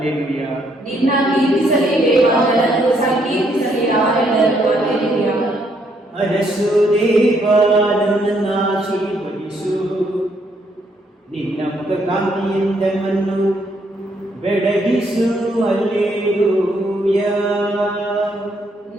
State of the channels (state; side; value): normal; both; correlation 0.72